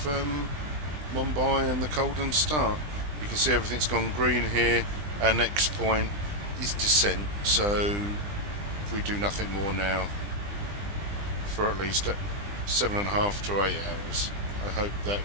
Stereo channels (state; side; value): late; left; 20 ms